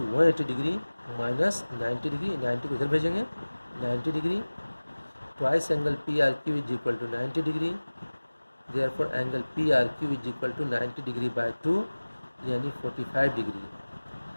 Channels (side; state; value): both; inverted; correlation -1.00